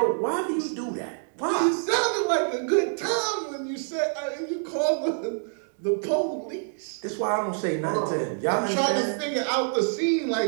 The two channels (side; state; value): left; silent; digital silence